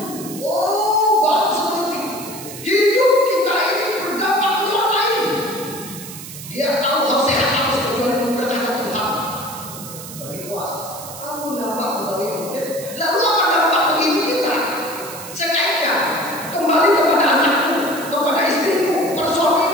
Oh, bagus seperti hidup kita ini berdampak pada orang lain. Dia tahu hal sehat harus berjuang mempertahankan Tuhan. Berarti puas. Kamu nampak kembali mungkin. Lalu apa dampak bagi kita? Saya kaitkan kembali kepada anakku, kepada istriku, kepada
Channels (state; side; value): noise; right; hiss, 12 dB below the sound